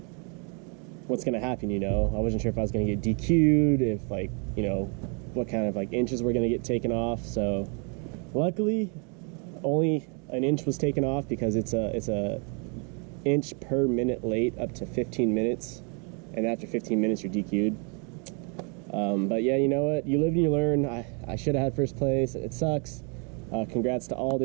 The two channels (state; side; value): quieter; left; 36.6 dB